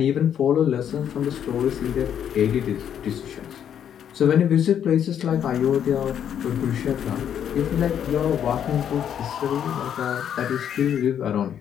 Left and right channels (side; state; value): right; quieter; 9.2 dB